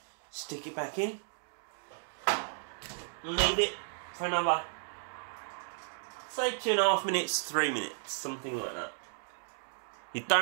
stick it back in and leave it for another, say 2.5 minutes, 3 minutes, something like that. You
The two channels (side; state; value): left; silent; digital silence